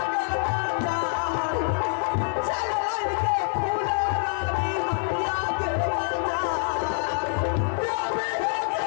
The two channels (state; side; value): silent; right; digital silence